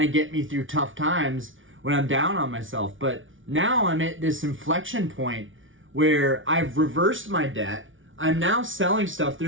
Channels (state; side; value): late; left; 0.57 ms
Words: of get me through tough times when I'm down on myself. But now I'm at this inflection point where I've reversed my debt. I'm now selling stuff.